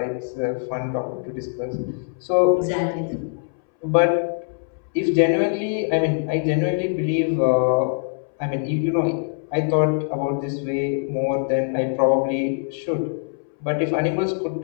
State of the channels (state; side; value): silent; right; 63 dB below the other